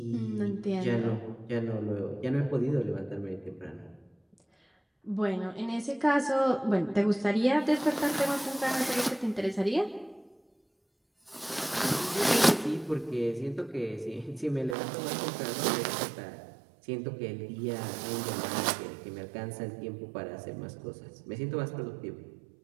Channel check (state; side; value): drops out; left; at 14.8 s